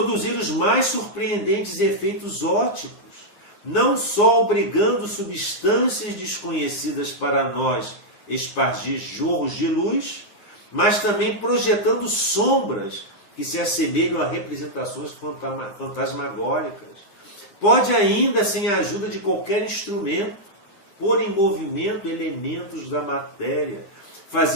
os mais surpreendentes efeitos ópticos, não só obrigando substâncias desconhecidas para nós espargir jorros de luz, mas também projetando sombras que se assemelham a representações fantasmagóricas. Pode ainda, sem a ajuda de qualquer instrumento, pôr em movimento elementos da matéria,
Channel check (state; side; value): late; right; 10 ms